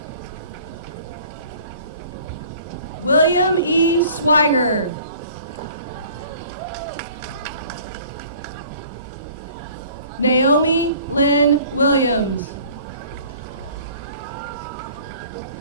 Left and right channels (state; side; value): inverted; both; correlation -0.51